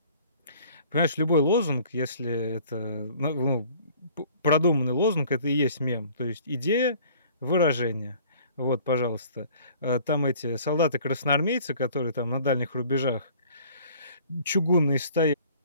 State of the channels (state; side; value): inverted; both; correlation -0.52